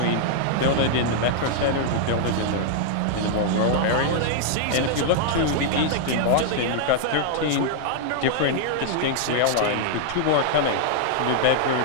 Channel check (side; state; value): both; different; correlation -0.01